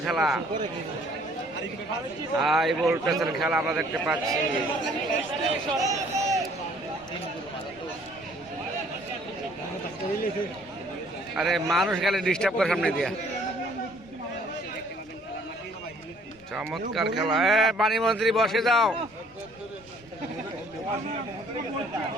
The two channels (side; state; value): both; normal; correlation 0.59